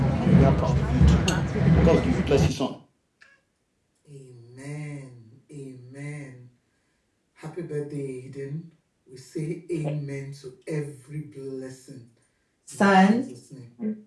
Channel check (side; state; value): both; identical; correlation 1.00